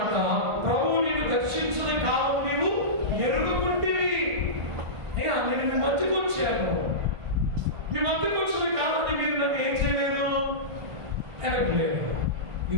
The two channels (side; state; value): left; late; 1.5 ms